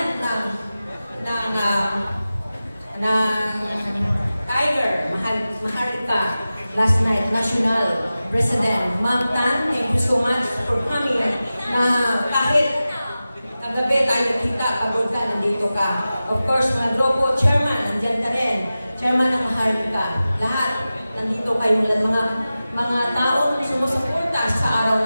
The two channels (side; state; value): both; inverted; correlation -0.95